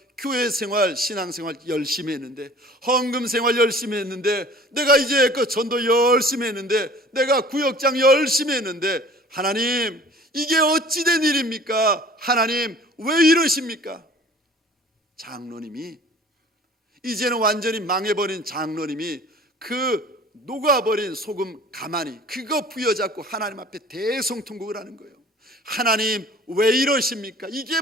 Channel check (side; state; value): both; normal; correlation 0.48